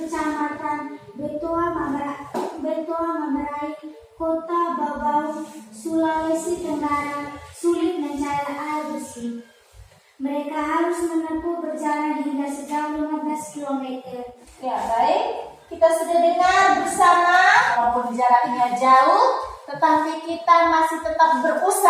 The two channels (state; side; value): identical; both; correlation 1.00